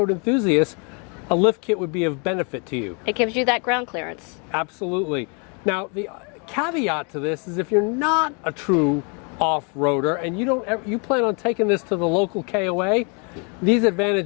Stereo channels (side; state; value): right; quieter; 35.5 dB